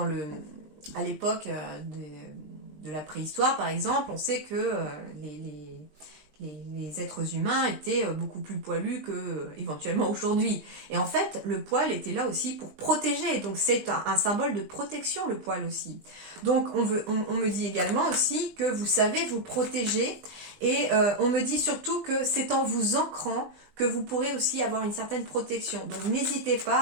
à l'époque de la préhistoire, par exemple, on sait que les êtres humains étaient beaucoup plus poilus que éventuellement aujourd'hui. Et en fait, le poil était là aussi pour protéger. Donc c'est un symbole de protection, le poil aussi. Donc on me dit également aussi que vous savez vous protéger. Et on me dit surtout que c'est en vous ancrant que vous pourrez aussi avoir une certaine protection. Donc n'hésitez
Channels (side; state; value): left; late; 20 ms